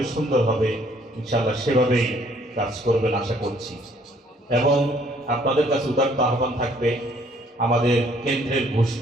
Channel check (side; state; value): both; normal; correlation 0.62